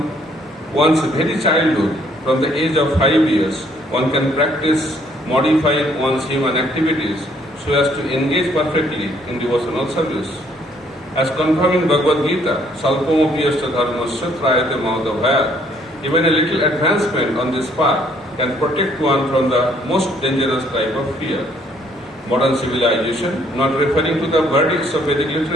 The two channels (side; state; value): both; normal; correlation 0.65